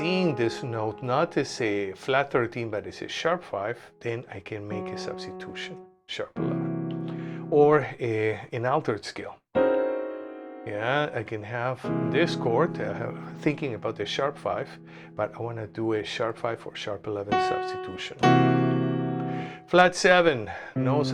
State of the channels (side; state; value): both; identical; correlation 1.00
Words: this note not as a flat 13 but as a sharp 5, then I can make a substitution, sharp 11, or an altered scale. Yeah, I can have this chord, thinking about the sharp 5, but I want to do a sharp 5 or sharp 11 substitution. Flat 7, no